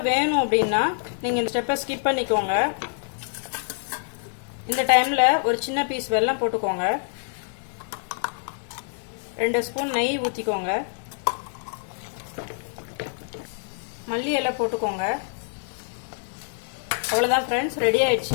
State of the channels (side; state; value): right; silent; 60 dB below the other